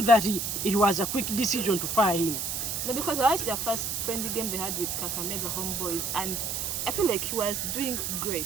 that it was a quick decision to fire him? No, because I watched their first friendly game they had with Kakamega Homeboys, and I feel like he was doing great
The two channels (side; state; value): right; noise; hiss, 2 dB below the sound